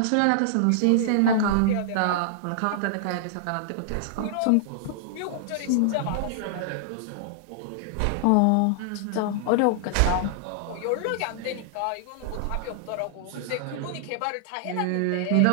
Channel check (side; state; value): both; different; correlation -0.01